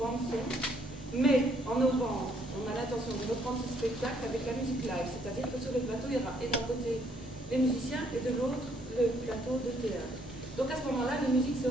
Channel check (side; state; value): both; normal; correlation 0.68